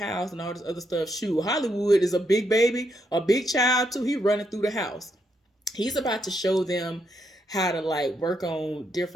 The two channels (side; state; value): both; normal; correlation 0.78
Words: and all this other stuff. Shoot, Hollywood is a big baby, a big child too. He running through the house. He's about to show them how to like work on